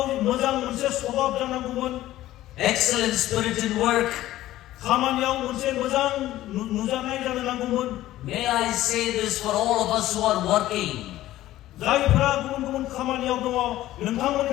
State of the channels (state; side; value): quieter; right; 14.9 dB